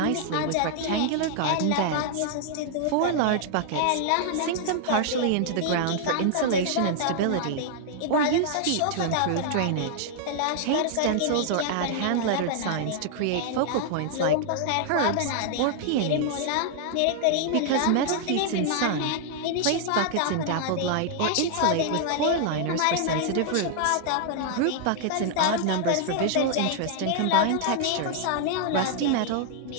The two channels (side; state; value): both; different; correlation -0.01